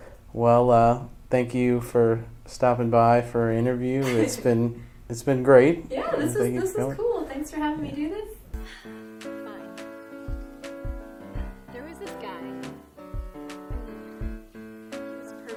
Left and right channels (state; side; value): identical; both; correlation 1.00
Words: Well, thank you for stopping by for our interview. It's been great. Yeah, this Thank you is for coming. cool. Thanks for having me do this.